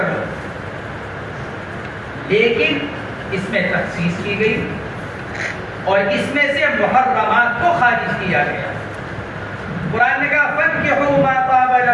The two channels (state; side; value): identical; both; correlation 1.00